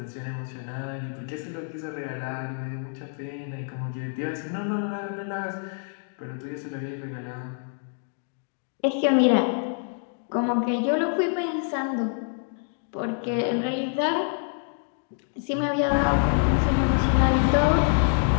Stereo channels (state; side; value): silent; right; 61 dB below the other